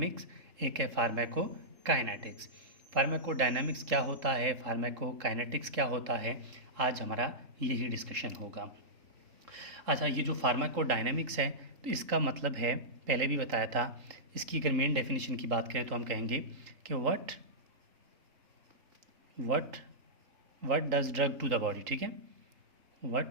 एक है फार्माकोकाइनेटिक्स। फार्माकोडायनामिक्स क्या होता है, फार्माकोकाइनेटिक्स क्या होता है, आज हमारा यही डिस्कशन होगा। अच्छा, ये जो फार्माकोडायनामिक्स है तो इसका मतलब है, पहले भी बताया था, इसकी अगर मेन डेफिनेशन की बात करें तो हम कहेंगे कि what what what does drug to the body. ठीक है,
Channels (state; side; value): late; left; 3.8 ms